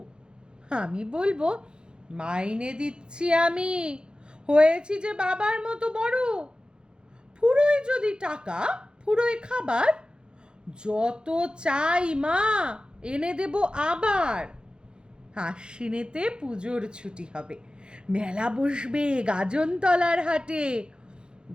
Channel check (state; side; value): late; left; 0.049 ms